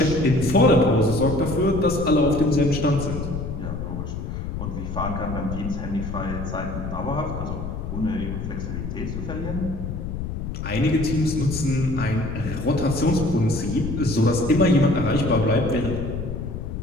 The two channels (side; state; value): left; noise; rumble, 5 dB below the sound